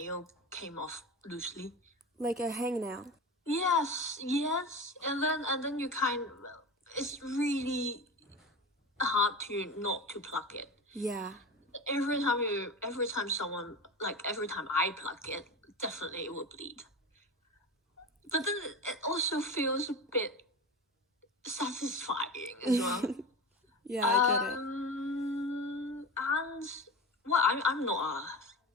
came off loosely. Like a hangnail. Yes, and then it's really hard to not to pluck it. Yeah. Every time I pluck it, definitely it will bleed. But then it also feels a bit satisfying as well. Yeah, I get it. And well, I'm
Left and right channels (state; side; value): normal; both; correlation 0.28